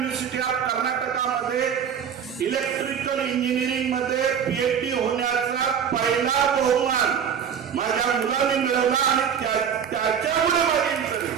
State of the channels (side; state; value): left; quieter; 7.8 dB